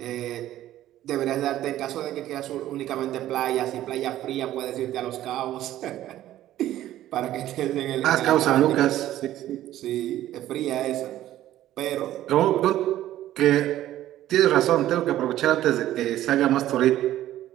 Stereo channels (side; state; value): left; quieter; 13.5 dB